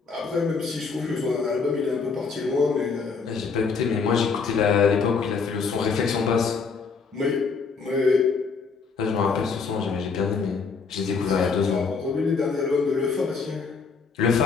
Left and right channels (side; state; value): right; quieter; 5.1 dB